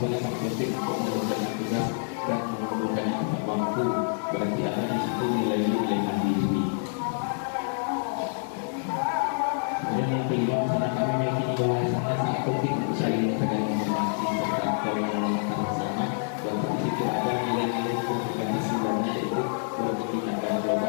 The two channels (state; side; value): silent; right; digital silence